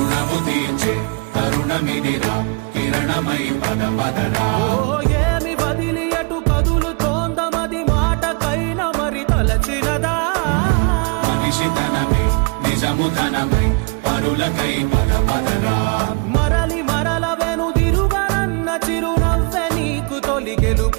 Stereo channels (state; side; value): quieter; left; 32.1 dB